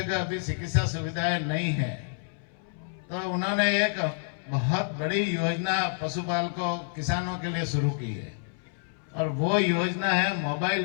अभी चिकित्सा सुविधाएं नहीं है, तो उन्होंने एक बहुत बड़ी योजना पशुपालकों किसानों के लिए शुरू की है और वो योजना है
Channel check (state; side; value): silent; right; 59 dB below the other